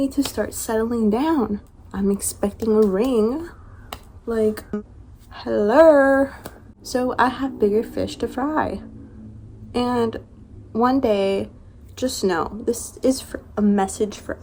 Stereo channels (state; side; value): identical; both; correlation 1.00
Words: to start settling down. I'm expecting a ring. Like, hello. So I have bigger fish to fry. And one day, just know, this is a message for